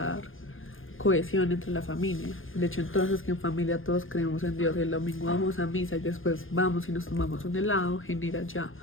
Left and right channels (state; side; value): late; right; 0.59 ms